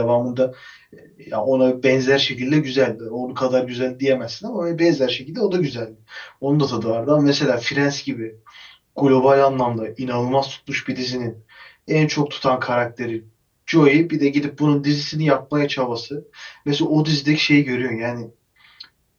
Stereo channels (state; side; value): identical; both; correlation 1.00